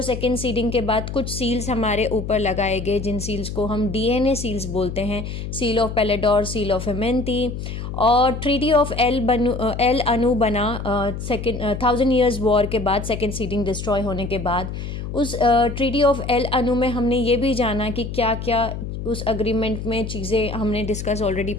सेकंड सीडिंग के बाद कुछ सील्स हमारे ऊपर लगाए गए, जिन सील्स को हम डीएनए सील्स बोलते हैं। सील ऑफ पेलेडोर, सील ऑफ एमेंती और ट्रीटी ऑफ एल अनु बना 1000 ईयर्स वॉर के बाद, सेकेंड सीडिंग डिस्ट्रॉय होने के बाद। उस ट्रीटी ऑफ एल अनु में हमने ये भी जाना कि क्या क्या उस अग्रीमेंट में चीज़ें हमने डिस्कस ऑलरेडी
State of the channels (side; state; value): left; noise; hum, 7 dB below the sound